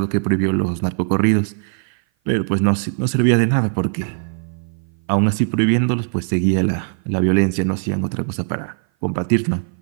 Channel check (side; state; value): left; silent; 57 dB below the other